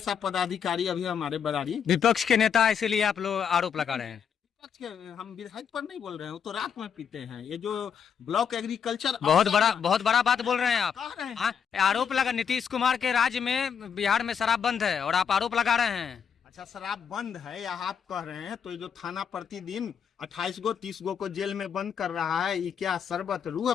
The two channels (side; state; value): right; quieter; 7.5 dB